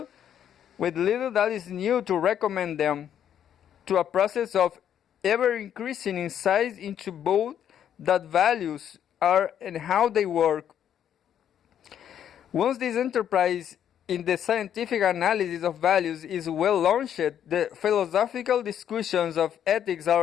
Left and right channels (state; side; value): quieter; right; 9.6 dB